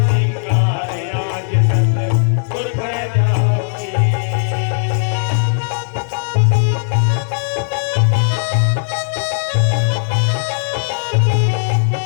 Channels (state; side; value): silent; right; digital silence